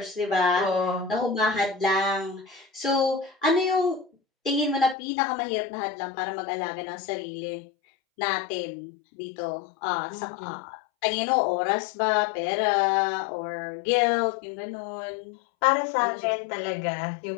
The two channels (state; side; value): drops out; right; at 5.0 s